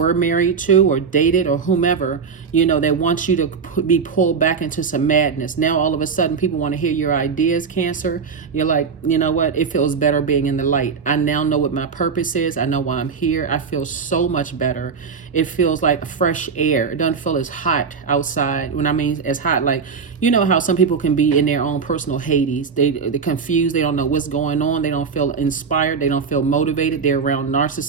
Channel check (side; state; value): left; quieter; 5.7 dB